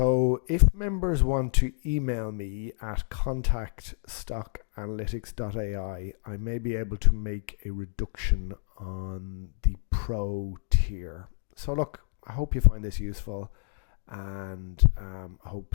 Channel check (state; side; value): silent; right; digital silence